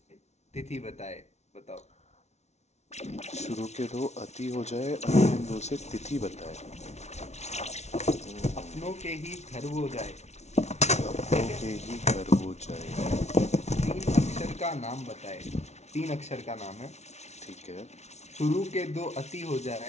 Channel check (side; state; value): right; late; 0.32 ms